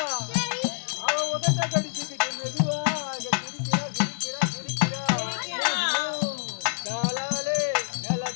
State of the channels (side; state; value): right; silent; digital silence